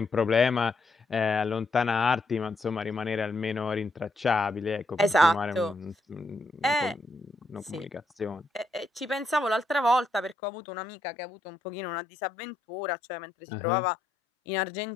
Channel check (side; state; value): right; drops out; at 10.4 s